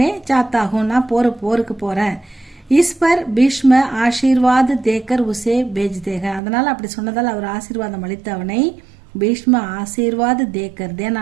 ஜாத்தாகும்னா போருக்கு போறேன். ஈஸ்வர் பீஷ்ம ஆசீர்வாத் தேக்கர் உசே பேஜ் தேக, அதனால அப்படி சொன்னதால் அவர் ஆசீர்வாதம் அளித்து அவனை பீஷ்ம ஆசீர்வாத் தேக்கர்,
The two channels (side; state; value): left; drops out; at 6.4 s